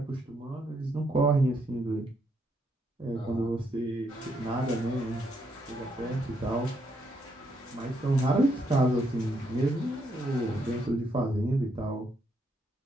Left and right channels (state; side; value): normal; both; correlation 0.75